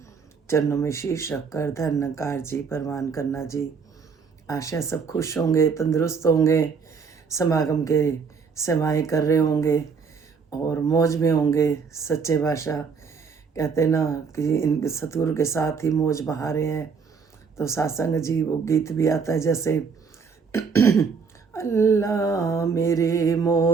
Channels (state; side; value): quieter; left; 5.6 dB